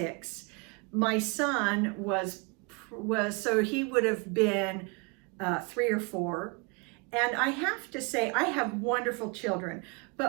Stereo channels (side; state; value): left; quieter; 30.7 dB